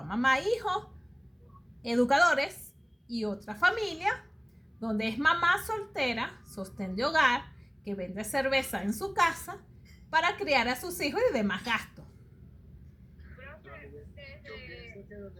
mamá, hijos, educadores, y otra familia donde es mamá soltera, sostén de hogar, que vende cerveza en su casa para criar a sus hijos y demás gastos. Yo pienso que donde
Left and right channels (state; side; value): identical; both; correlation 1.00